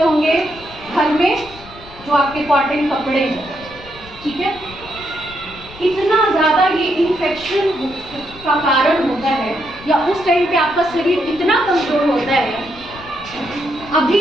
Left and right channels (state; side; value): noise; left; rumble, 19 dB below the sound